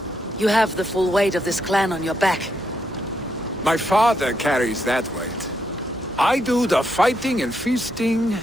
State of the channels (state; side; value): normal; both; correlation 0.79